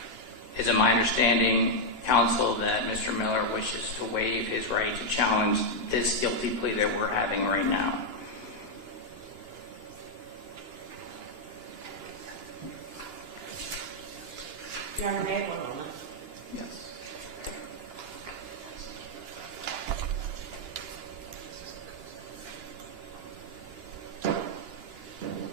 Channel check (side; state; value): left; late; 2.9 ms